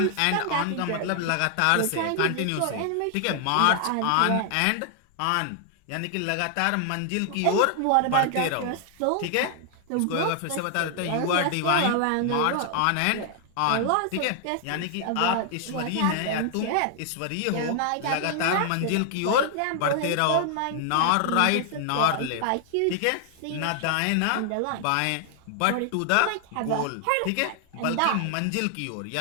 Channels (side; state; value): both; different; correlation 0.00